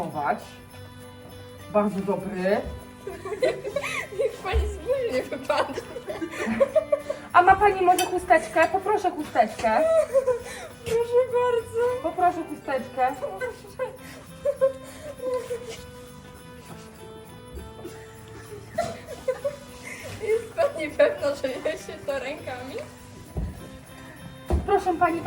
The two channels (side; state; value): both; identical; correlation 1.00